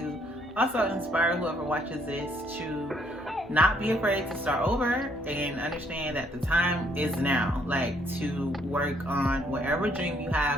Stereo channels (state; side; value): normal; both; correlation 0.68